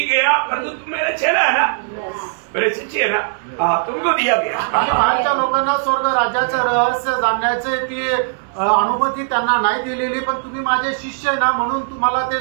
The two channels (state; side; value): silent; left; 67 dB below the other